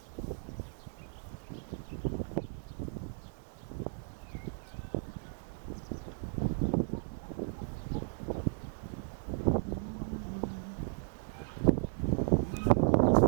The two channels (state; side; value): silent; left; digital silence